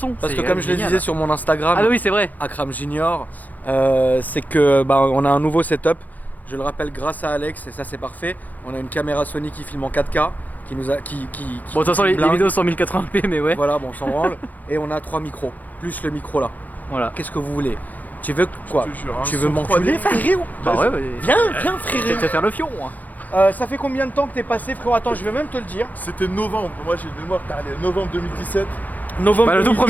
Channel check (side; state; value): right; late; 0.081 ms